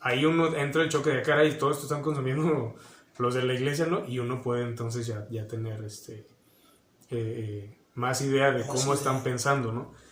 ahí uno entra el choque de cara y todo esto están consumiendo los de la iglesia, ¿no? Y uno puede entonces ya tener más idea de cómo están pensando, ¿no?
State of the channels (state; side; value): identical; both; correlation 1.00